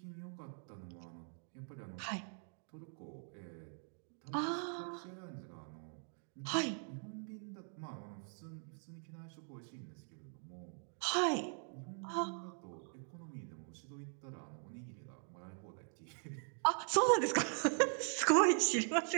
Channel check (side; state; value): left; silent; 50 dB below the other